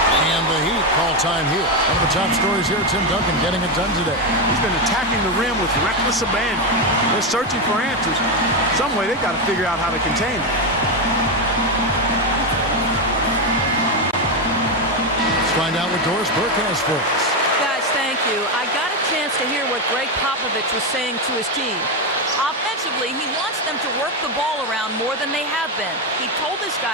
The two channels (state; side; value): normal; both; correlation 0.09